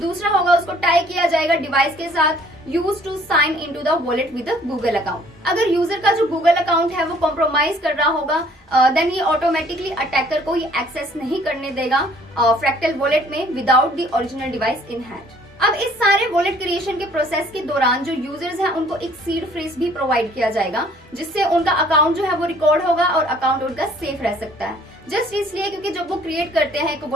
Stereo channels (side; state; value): both; normal; correlation 0.57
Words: होगा उसको टाई किया जाएगा डिवाइस के साथ use to sign into the wallet with Google account. अगर यूजर का जो गूगल अकाउंट है वो कॉम्प्रोमाइज कर रहा होगा देन ये ऑटोमेटिकली अटैकर को ये एक्सेस नहीं करने देगा फ्रैक्टल वॉलेट में without the original device in hand. अब इस सारे वॉलेट क्रिएशन के प्रोसेस के दौरान जो यूजर्स हैं उनको एक सीड फ्रेज भी प्रोवाइड किया जाएगा, जिससे उनका अकाउंट जो है वो रिकॉर्ड होगा और अकाउंट उनका सेफ रह सकता है। जस्ट इसलिए क्योंकि जब वो क्रिएट करते हैं एक